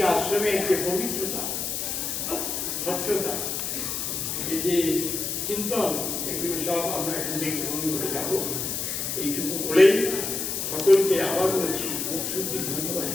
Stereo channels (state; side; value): noise; left; hiss, 2 dB below the sound